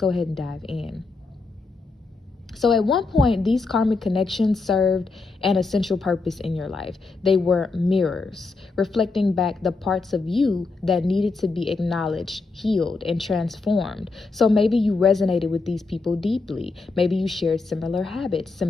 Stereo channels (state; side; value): quieter; right; 3.9 dB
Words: ahead and dive in. So at one point, these karmic connections served an essential purpose in your life. They were mirrors, reflecting back the parts of you that needed to be acknowledged, healed, and transformed. So maybe you resonated with these people deeply. Maybe you shared similar habits,